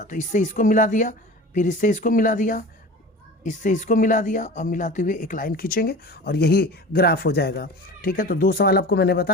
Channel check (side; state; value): both; normal; correlation 0.36